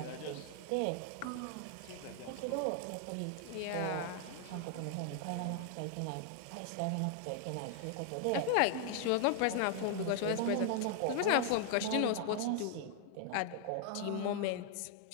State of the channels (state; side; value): different; both; correlation 0.00